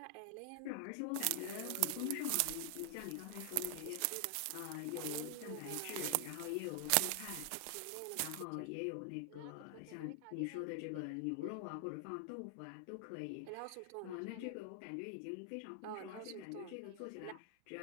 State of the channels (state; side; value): different; both; correlation 0.00